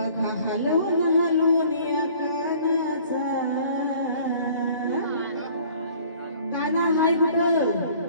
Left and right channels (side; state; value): both; inverted; correlation -0.53